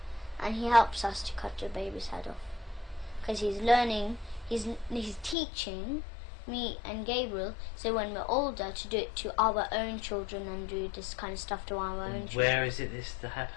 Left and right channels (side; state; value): right; drops out; at 5.4 s